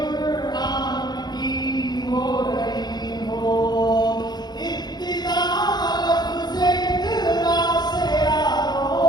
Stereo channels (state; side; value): late; right; 0.20 ms